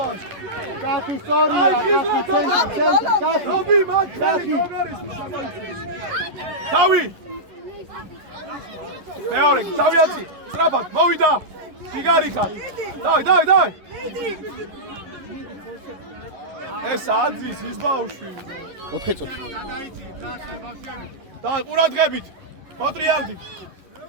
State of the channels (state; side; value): late; left; 11 ms